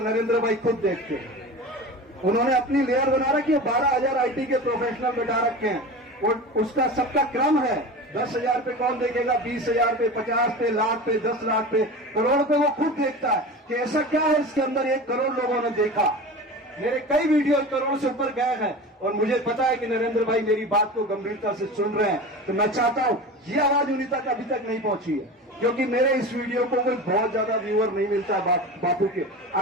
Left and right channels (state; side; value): normal; both; correlation 0.32